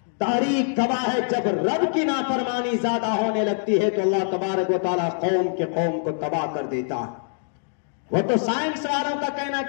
تاریخ گواہ ہے جب رب کی نافرمانی زیادہ ہونے لگتی ہے تو اللہ تبارک و تعالیٰ قوم کو تباہ کر دیتا ہے. وہ تو سائنس والوں کا کہنا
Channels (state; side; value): silent; right; digital silence